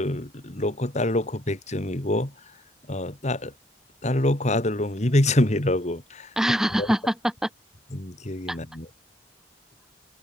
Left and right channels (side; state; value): both; normal; correlation 0.69